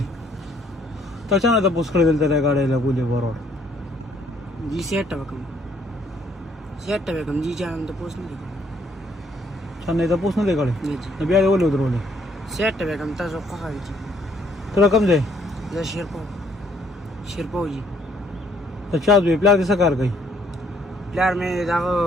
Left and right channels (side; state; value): both; normal; correlation 0.66